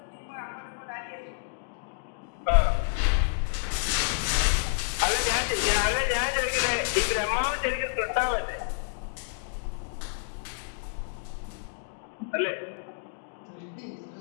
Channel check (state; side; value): silent; right; digital silence